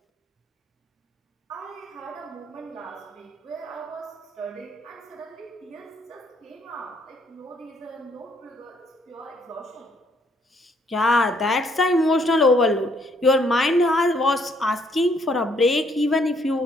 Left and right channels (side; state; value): both; normal; correlation 0.68